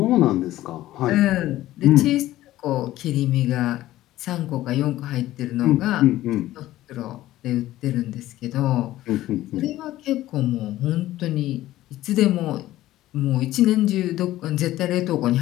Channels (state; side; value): quieter; right; 15.1 dB